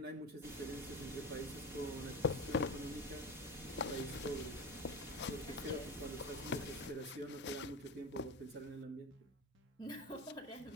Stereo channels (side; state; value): both; normal; correlation 0.26